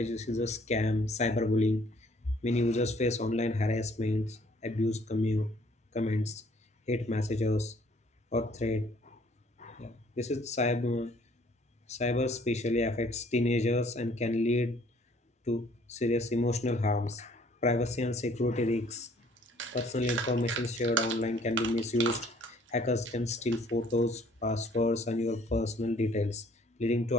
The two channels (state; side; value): normal; both; correlation 0.60